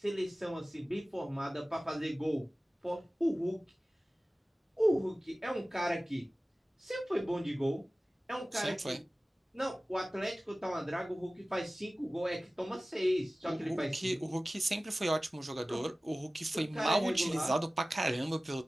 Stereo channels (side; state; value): both; normal; correlation 0.97